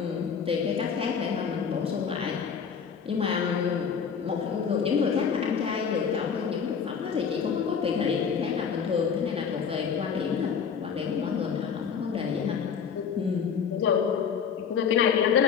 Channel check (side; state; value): right; quieter; 6.7 dB